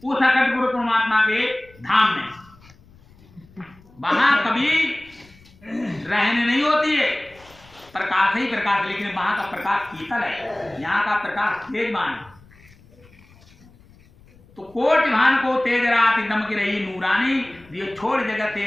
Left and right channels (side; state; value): left; noise; rumble, 26 dB below the sound